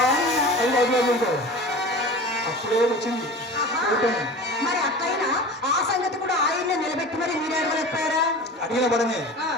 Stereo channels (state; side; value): normal; both; correlation 0.35